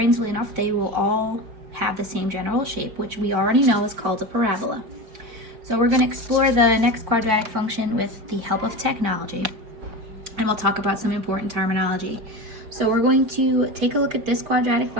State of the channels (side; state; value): left; late; 4.6 ms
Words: enough, they will all have the same general shape, which we already know is called a parabola. So we're going to explore the next quadratic function with the help of technology, and we'll talk about some important terminology. So we're going to take a look at this quadratic